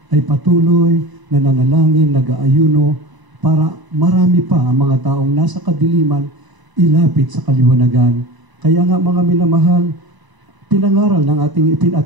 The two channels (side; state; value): left; late; 1.0 ms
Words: ay patuloy na nanalangin, nag-aayuno para marami pa ang mga taong nasa kadiliman ilapit sa kaliwanagan. Kaya nga mga minamahal, pinangaral ng ating